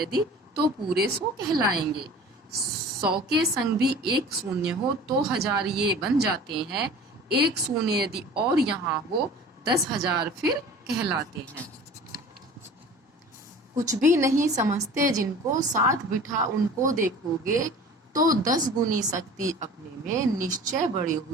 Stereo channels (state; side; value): normal; both; correlation 0.42